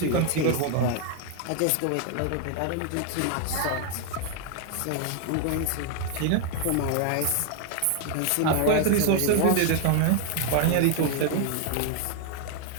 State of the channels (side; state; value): both; different; correlation 0.00